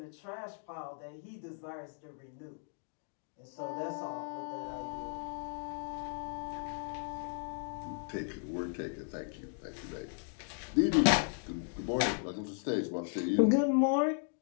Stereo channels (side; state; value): right; silent; 54 dB below the other